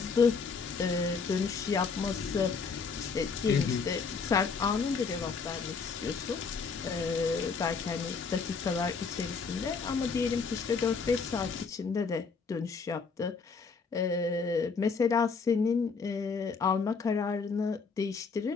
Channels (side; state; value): right; quieter; 5.1 dB